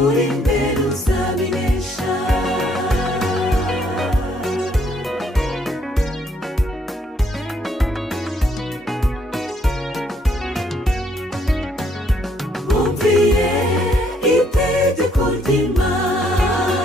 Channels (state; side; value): normal; both; correlation 0.69